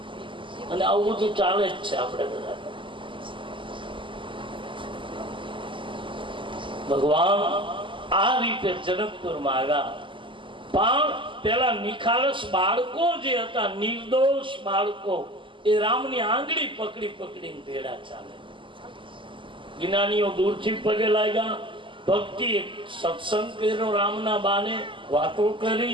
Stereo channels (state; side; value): late; left; 0.25 ms